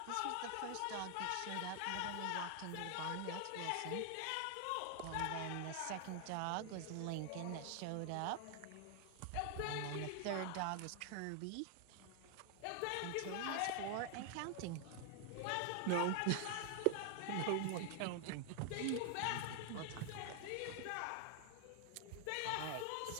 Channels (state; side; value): different; both; correlation 0.00